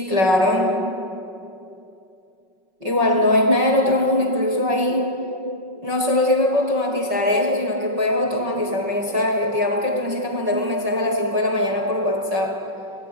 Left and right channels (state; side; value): late; left; 5.4 ms